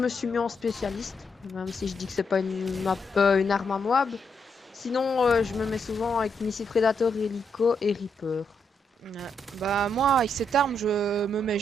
suis mis en spécialiste, même si je dis que c'est pas une arme à Moab. Sinon, je me mets souvent avec missile Predator, Helico et Reaper. Ouais. Bah moi, avec cette arme, je me mets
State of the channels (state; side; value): normal; both; correlation 0.79